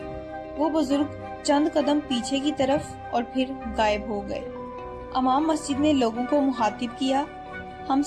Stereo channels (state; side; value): identical; both; correlation 1.00